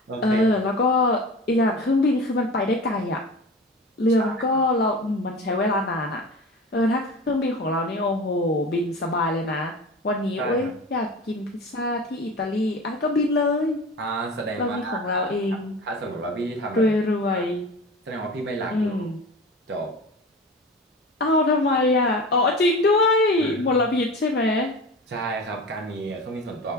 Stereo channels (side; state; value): both; normal; correlation 0.33